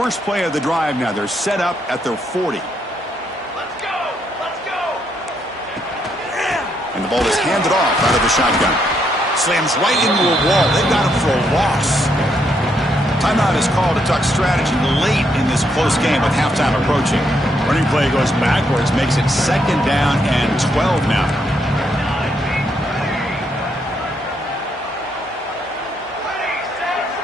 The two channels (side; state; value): both; normal; correlation 0.76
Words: play of the drive now. They're set up at their 40. Let's go! Let's go! And the ball is handed off out of the shotgun. Slams right into a wall. They've got him for a loss. Timeout is called to talk strategy late in this close game with halftime approaching. Running play goes backwards, makes it second down and 12 now.